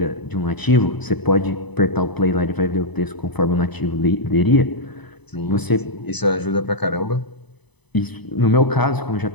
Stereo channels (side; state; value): right; late; 0.99 ms